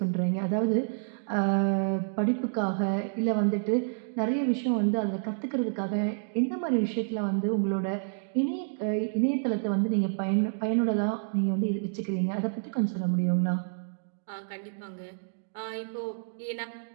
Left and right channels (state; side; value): silent; left; digital silence